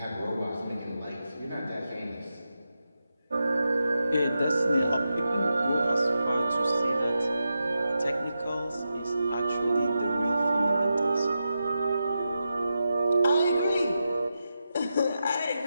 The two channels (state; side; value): inverted; both; correlation -0.89